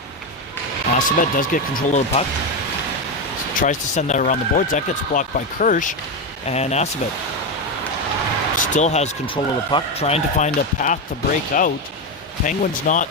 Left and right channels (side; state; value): both; normal; correlation 0.11